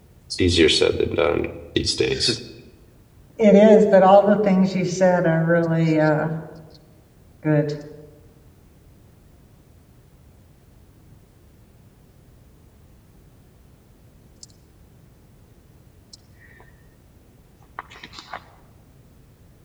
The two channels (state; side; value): identical; both; correlation 1.00